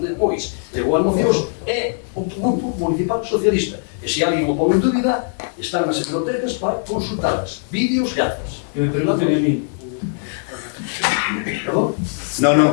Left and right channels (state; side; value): silent; right; digital silence